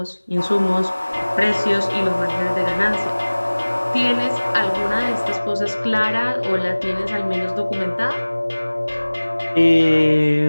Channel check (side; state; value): both; inverted; correlation -1.00